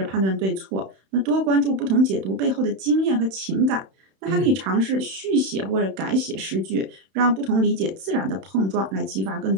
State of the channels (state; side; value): late; left; 31 ms